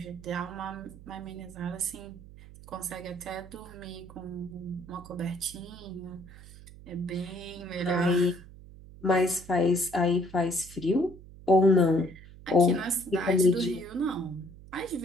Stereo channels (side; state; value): right; noise; hum, 18 dB below the sound